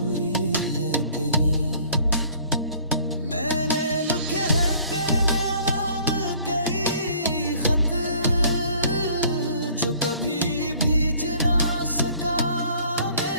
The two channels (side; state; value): both; inverted; correlation -0.55